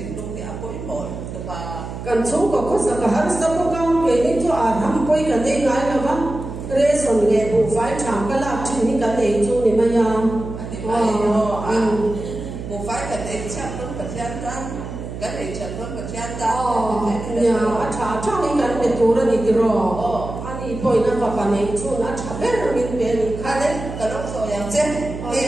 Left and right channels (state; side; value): noise; right; hum, 9 dB below the sound